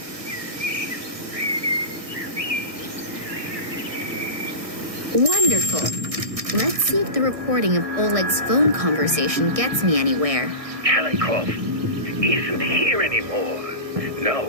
Wonderful. Let's see if the recording of Oleg's phone conversation gets me anywhere. Kalinkov isn't here anymore.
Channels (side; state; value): left; late; 1.6 ms